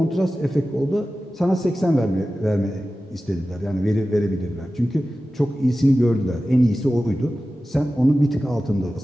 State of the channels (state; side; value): normal; both; correlation 0.95